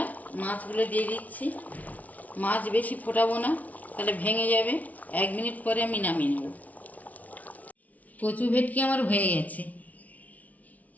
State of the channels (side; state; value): right; late; 0.072 ms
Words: মাছগুলো দিয়ে দিচ্ছি। মাছ বেশি ফোটাবো না, তাহলে ভেঙে যাবে। 1 মিনিট পরে আমি নামিয়ে নেব। কচু ভেটকি আমার হয়ে গেছে।